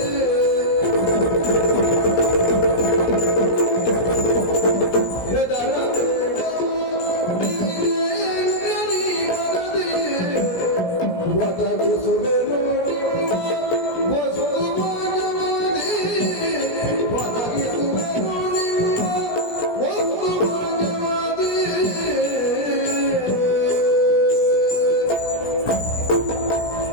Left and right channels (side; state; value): right; late; 17 ms